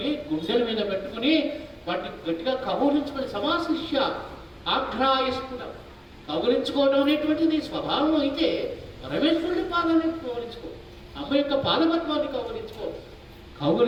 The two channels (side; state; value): both; identical; correlation 1.00